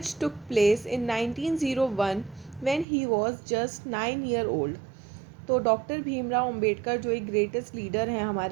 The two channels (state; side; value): drops out; left; at 2.9 s